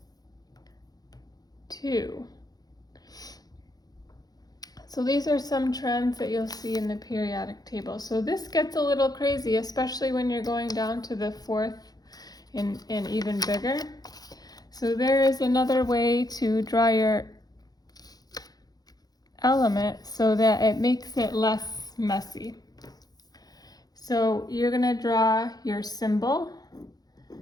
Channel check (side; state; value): right; late; 0.19 ms